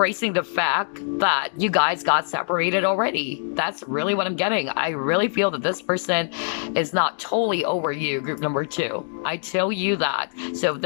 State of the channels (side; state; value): right; silent; digital silence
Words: the fact that you guys got separated already. That's really what I'm getting. I really feel that this person is not totally over you, group number 2. I tell you that. So if